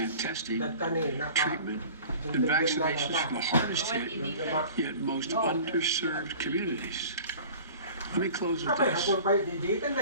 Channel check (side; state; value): both; inverted; correlation -0.43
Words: testing, treatment, and vaccinations for the hardest hit, yet most underserved communities. Let me close with this.